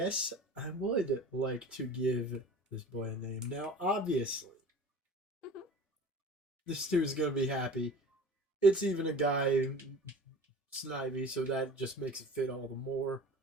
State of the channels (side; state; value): both; normal; correlation 0.40